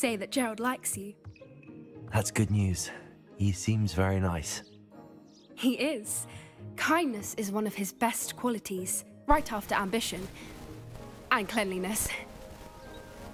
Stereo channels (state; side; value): identical; both; correlation 1.00